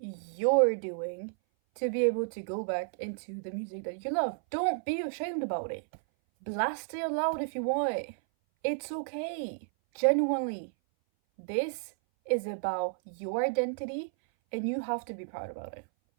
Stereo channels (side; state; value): left; silent; 56 dB below the other